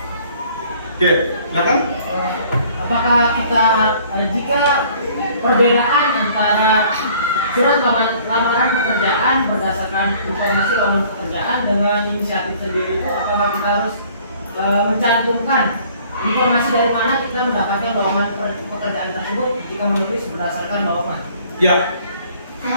Oke, silakan. Apakah jika perbedaan antara surat lamaran pekerjaan berdasarkan informasi lowongan pekerjaan dengan inisiatif sendiri itu, apakah kita harus mencantumkan informasi dari mana kita mendapatkan lowongan pekerjaan tersebut jika menulis berdasarkan lowongan? Ya,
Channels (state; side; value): inverted; both; correlation -0.56